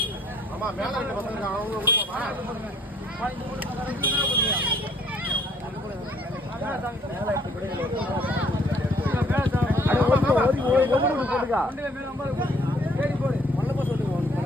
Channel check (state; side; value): normal; both; correlation 0.62